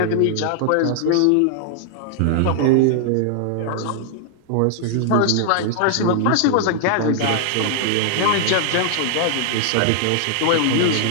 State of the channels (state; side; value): different; both; correlation 0.00